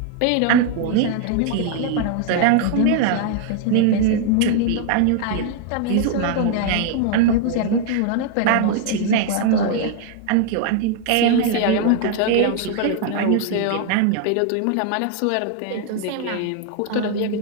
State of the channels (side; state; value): both; different; correlation 0.00